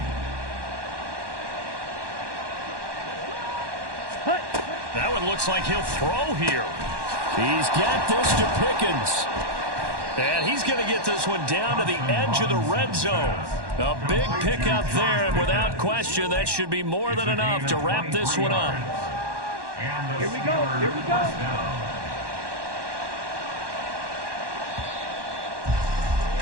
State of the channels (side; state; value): left; late; 1.1 ms